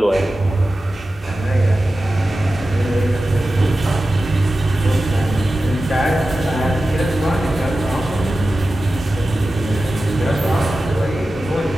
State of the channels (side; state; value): both; normal; correlation 0.94